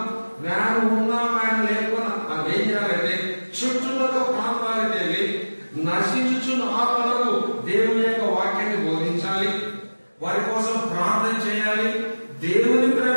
వ్యాను ఉన్నా వ్యాను లేకున్నా మనం ఏం చేయాలంటే చుట్టుపక్కల ప్రాంతాలకు వెళ్ళి నశించుచున్న ఆత్మలకు దేవుని యొక్క వాక్యాన్ని బోధించాలి, వారి కోసం ప్రార్థన చేయాలి, దేవుని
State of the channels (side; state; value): both; inverted; correlation -1.00